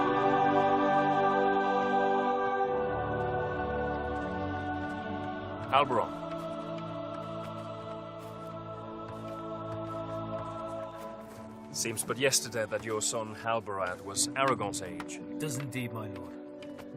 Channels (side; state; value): both; identical; correlation 1.00